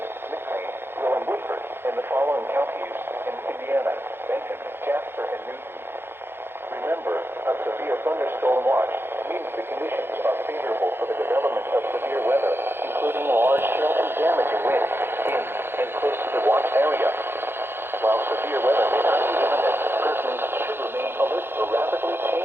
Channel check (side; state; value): left; late; 0.11 ms